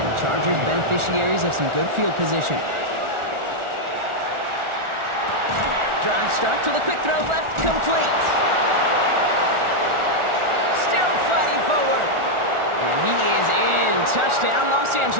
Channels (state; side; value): late; left; 1.4 ms